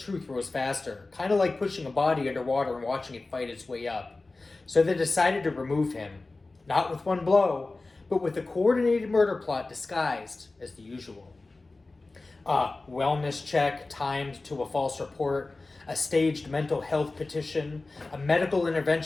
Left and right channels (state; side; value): quieter; right; 3.4 dB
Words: rose faster. Kind of like pushing a body underwater and watching it fight its way up. So they decided to remove him. Not with one blow, but with a coordinated murder plot disguised as the usual. A wellness check timed to a false report, a staged mental health petition, a medical